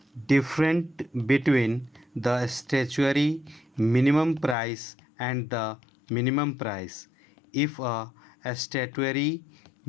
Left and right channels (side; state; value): right; drops out; at 4.5 s